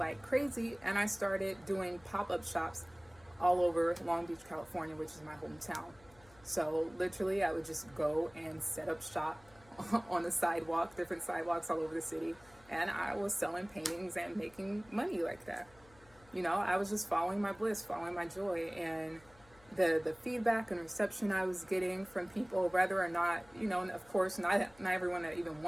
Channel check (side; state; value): left; noise; hum, 26 dB below the sound